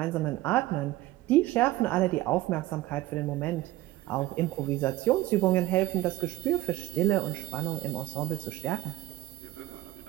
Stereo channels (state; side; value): quieter; left; 17.5 dB